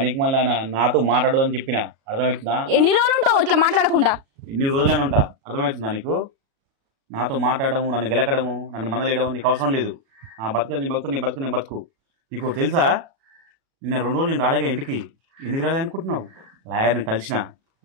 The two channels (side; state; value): left; late; 36 ms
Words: మళ్ళీ నాతో మాట్లాడదని చెప్పిన అర్థమవుతుందా ఎన్ని రోజులు ఉంటావు ఇట్లా మాట్లాడకుండా ఎన్ని రోజులైనా ఉంటా అర్థమవుతుందా నీకు నాతో మాట్లాడము నన్ను గెలకడము నన్ను మందలేయడం నీకు అవసరం లేదు నా బతుకు నీ బతుకు నీ బతుకు నీ బతుకు నీకు తెలుసా నిన్న 2 రోజులు నేను రాలేగా ఇంటికి ఎందుకు రాలే అనుకుంటున్నావు లాయర్ని కలిసిన